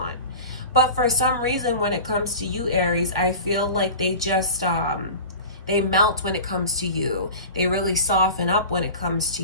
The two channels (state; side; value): inverted; both; correlation -0.34